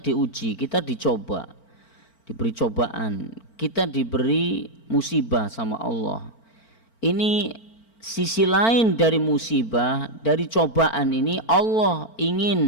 kita dicoba, diberi cobaan, kita diberi musibah sama Allah. Ini sisi lain dari musibah, dari cobaan ini, Allah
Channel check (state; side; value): late; right; 4.4 ms